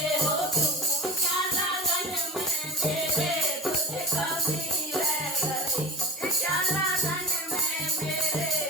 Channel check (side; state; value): both; normal; correlation 0.35